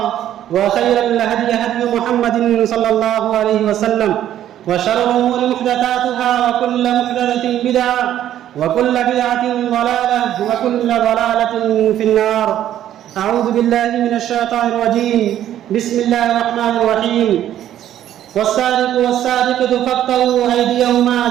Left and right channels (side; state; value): left; quieter; 11.6 dB